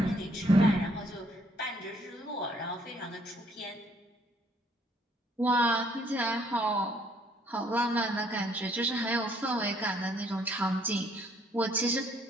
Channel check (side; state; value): both; normal; correlation 0.65